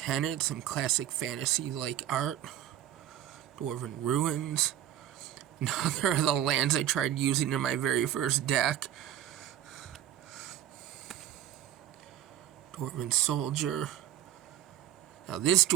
some classic fantasy-like art. Dwarven Ruins. Another of the lands I tried using in my very first deck. Dwarven Soldier. Now this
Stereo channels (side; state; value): left; quieter; 11.5 dB